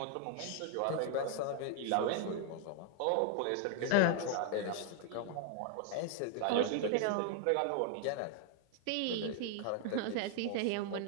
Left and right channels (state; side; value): different; both; correlation 0.00